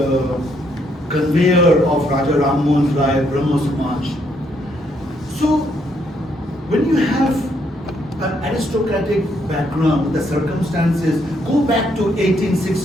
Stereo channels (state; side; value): normal; both; correlation 0.73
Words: conveyor of Raja Ram Mohan Rai Brahmo Samaj. So, when you have an aristocratic background, the circumstances go back to